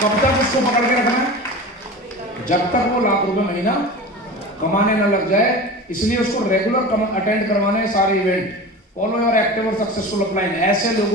तक उसको पकड़ के रखना है? जब तक वो लाख रुपए महीना कमाने न लग जाए। इसलिए उसको रेगुलर अटेंड करवाने सारे इवेंट। फॉलो योर एक्टिव और सक्सेसफुल अपलाइन। ऐसे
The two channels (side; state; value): both; normal; correlation 0.33